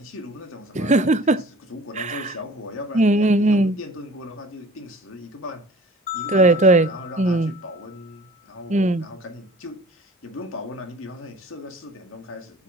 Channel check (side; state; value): both; normal; correlation 0.46